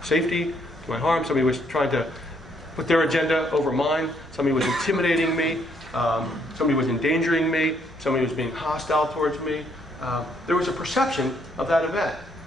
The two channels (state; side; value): normal; both; correlation 0.70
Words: safety, to my harm. Somebody was trying to put their agenda over mine. Somebody was intimidating me. Somebody was endangering me. Somebody was being hostile towards me. There was a perception of that event